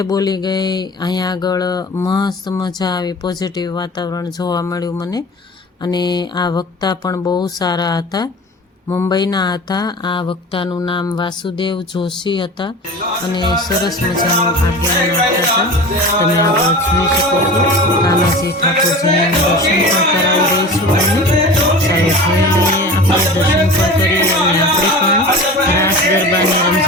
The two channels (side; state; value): both; normal; correlation 0.35